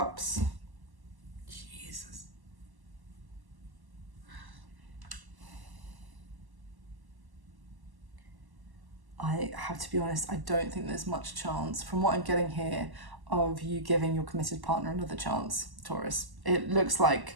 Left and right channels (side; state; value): left; late; 1.1 ms